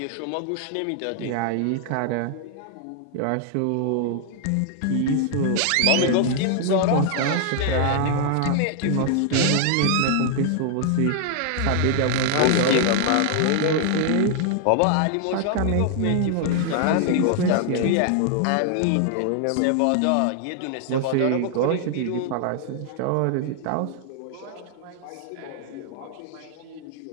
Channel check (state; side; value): different; both; correlation 0.00